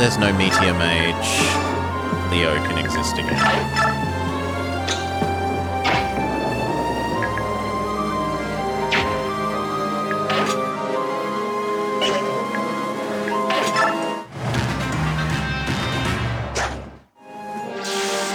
no Meteor Mage, Leo can exist again.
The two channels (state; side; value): identical; both; correlation 1.00